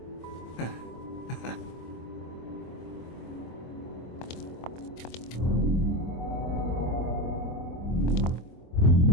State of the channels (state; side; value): late; right; 24 ms